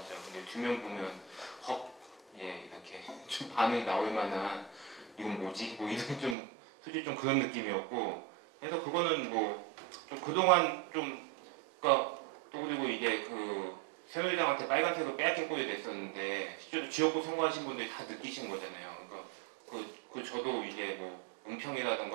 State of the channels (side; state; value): left; drops out; at 6.4 s